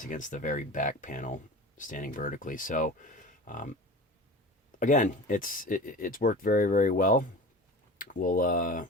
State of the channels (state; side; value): normal; both; correlation 0.35